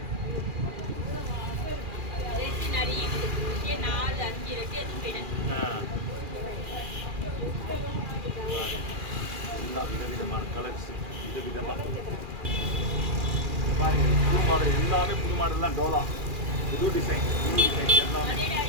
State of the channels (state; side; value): late; left; 2.4 ms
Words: எல்லாம் விதவிதமான கலர்ஸ், விதவிதமாக பாருங்க. புது மாடல் எல்லாமே புது மாடல் தான். டோலா புது டிசைன் எல்லாமே